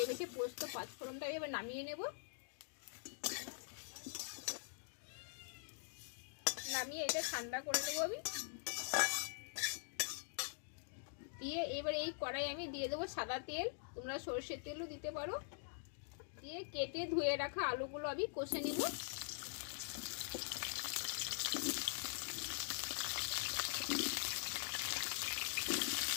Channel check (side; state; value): right; silent; digital silence